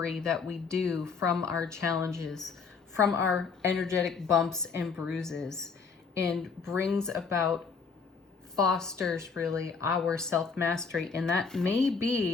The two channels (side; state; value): right; quieter; 5.3 dB